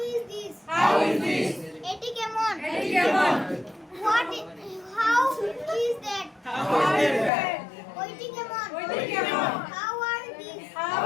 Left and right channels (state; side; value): drops out; right; at 7.3 s